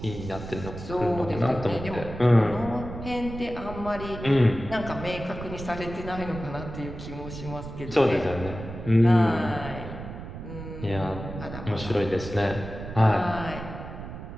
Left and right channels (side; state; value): right; noise; rumble, 10 dB below the sound